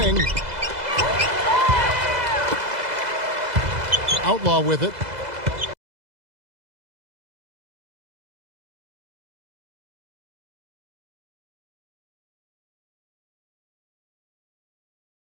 Outlaw with it.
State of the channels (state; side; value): late; left; 2.0 ms